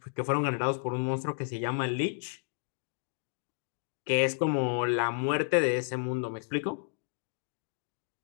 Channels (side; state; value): right; silent; 56 dB below the other